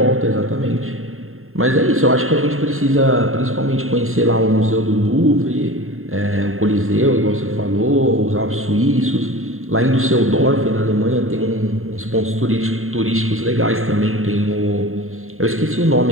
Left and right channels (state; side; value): late; left; 0.61 ms